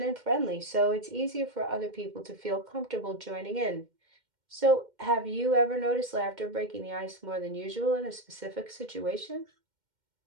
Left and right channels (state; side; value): late; left; 2.1 ms